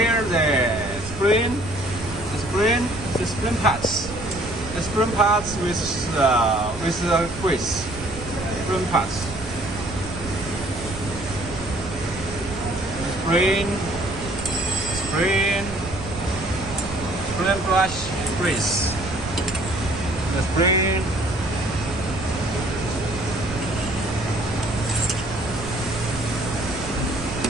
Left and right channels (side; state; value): right; noise; rumble, 12 dB below the sound